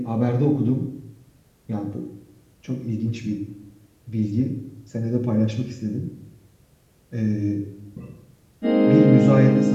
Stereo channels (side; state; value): both; identical; correlation 1.00